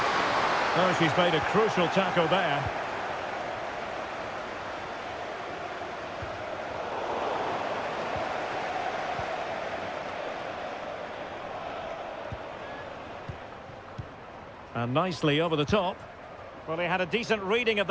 Oh, she's made a crucial tackle there. And nicely over the top. Well, he had a decent reading of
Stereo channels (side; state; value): both; identical; correlation 1.00